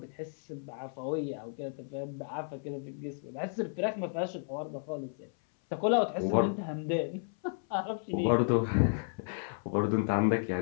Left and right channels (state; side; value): silent; right; 56 dB below the other